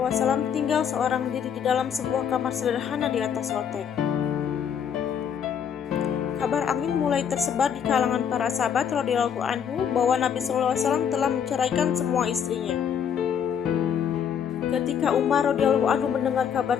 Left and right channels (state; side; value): quieter; right; 7.9 dB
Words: Alaihi Wasallam tinggal seorang diri di dalam sebuah kamar sederhana di atas loteng. Kabar angin mulai tersebar di kalangan para sahabat radhiyallahu anhu bahwa Nabi Shallallahu Alaihi Wasallam telah menceraikan semua istrinya. Ketika Umar radhiyallahu anhu mendengar kabar